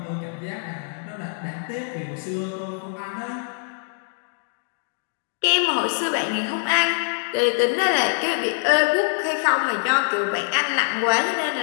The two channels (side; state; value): right; silent; digital silence